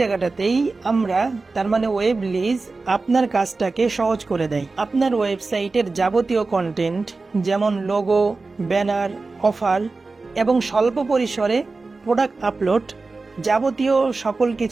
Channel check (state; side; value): quieter; left; 3.8 dB